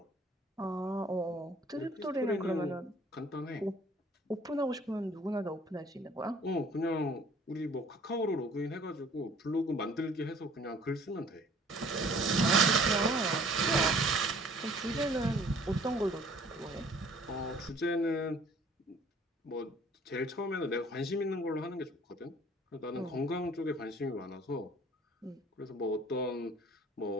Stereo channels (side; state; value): both; normal; correlation 0.54